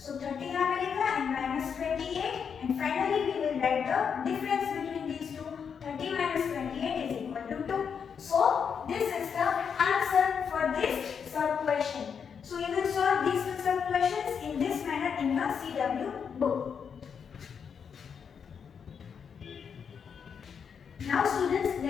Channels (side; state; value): right; quieter; 6.8 dB